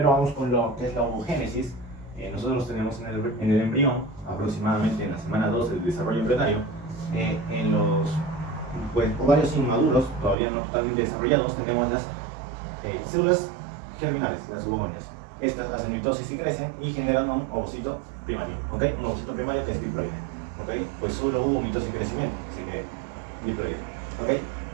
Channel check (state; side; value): drops out; left; at 10.4 s